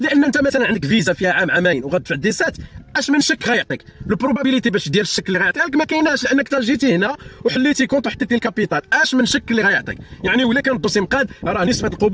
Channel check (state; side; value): identical; both; correlation 1.00